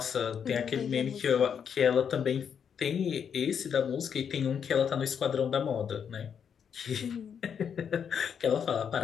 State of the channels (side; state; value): right; quieter; 7.5 dB